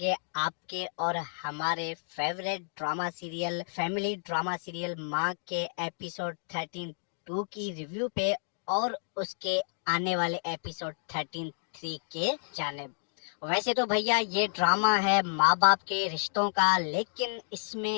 आपके और हमारे favourite drama serial, family drama serial माँ के एपिसोड 13-2 की रिव्यू पे और उसके आने वाले एपिसोड 13-3 के जानिब। वैसे तो भैया ये ड्रामा है माँ बाप के रिश्तों का, लेकिन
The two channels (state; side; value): silent; right; digital silence